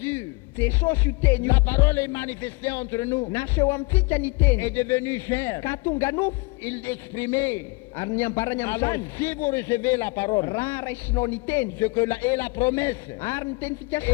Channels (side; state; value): right; quieter; 26.8 dB